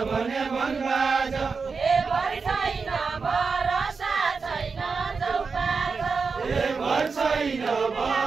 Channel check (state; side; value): quieter; left; 4.9 dB